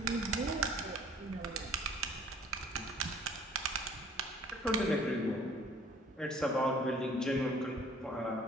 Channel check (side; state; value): both; normal; correlation 0.54